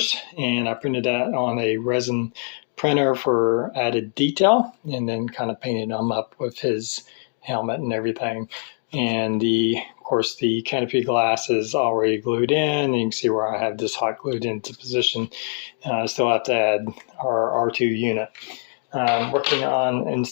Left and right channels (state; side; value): silent; right; 58 dB below the other